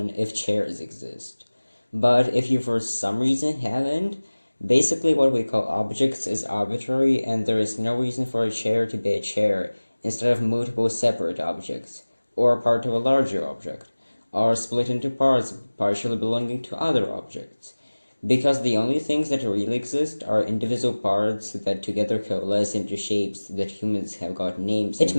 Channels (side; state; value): both; inverted; correlation -1.00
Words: if chairs exist. But if you for some reason haven't, basically what we call objects is arbitrary, and there is no reason for a chair to be a chair instead of multiple separate objects, or part of a larger object, or split into parts partially belonging to other objects, because the only things that really exist are indivisible parts that together coalesce into shapes that humans have got names. It